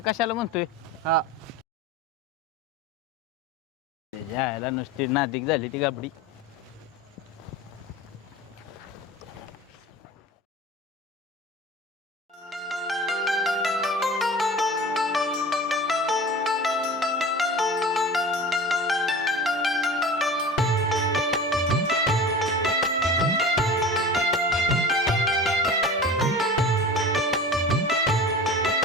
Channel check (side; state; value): both; normal; correlation 0.35